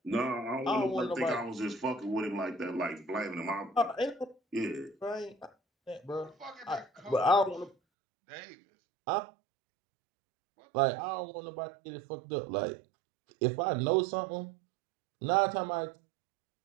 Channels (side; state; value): left; drops out; at 7.8 s